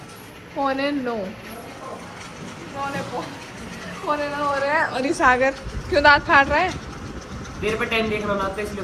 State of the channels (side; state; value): both; identical; correlation 1.00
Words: 8:45। 9:45 हो रहे हैं और ये सागर क्यों दांत फाड़ रहा है? देर पे टाइम देख रहा ना तो इसलिए